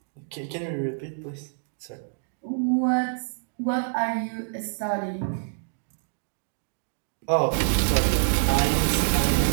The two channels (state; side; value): silent; left; digital silence